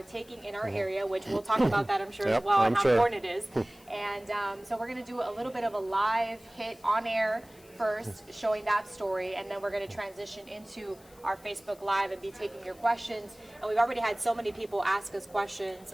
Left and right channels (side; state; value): left; noise; hiss, 26 dB below the sound